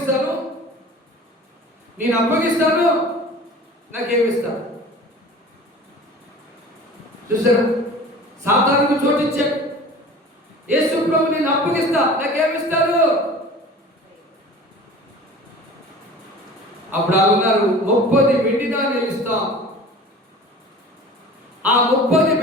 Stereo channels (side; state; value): both; normal; correlation 0.41